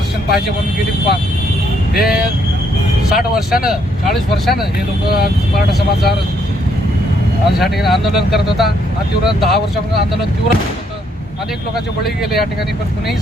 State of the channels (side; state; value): both; normal; correlation 0.71